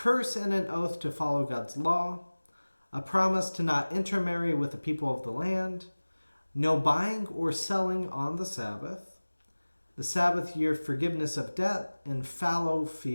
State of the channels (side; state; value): both; inverted; correlation -1.00